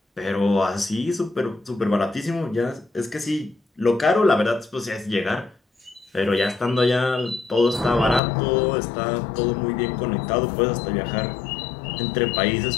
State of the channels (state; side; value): drops out; right; at 8.2 s